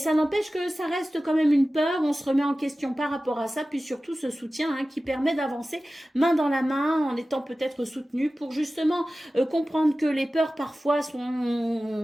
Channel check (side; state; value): both; normal; correlation 0.96